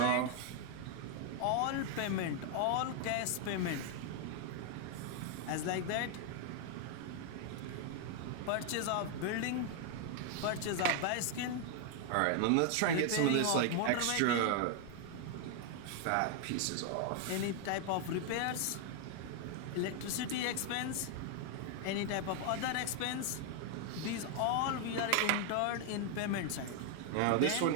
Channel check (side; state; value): both; different; correlation 0.00